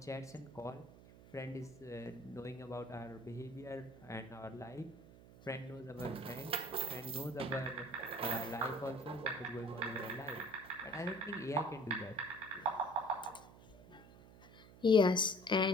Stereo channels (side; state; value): right; noise; hum, 20 dB below the sound